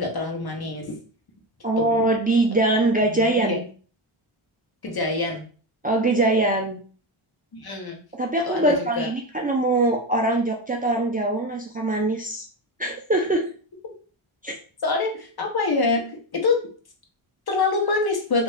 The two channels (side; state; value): both; normal; correlation 0.14